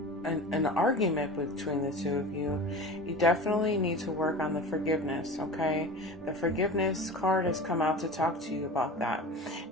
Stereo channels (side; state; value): both; normal; correlation 0.33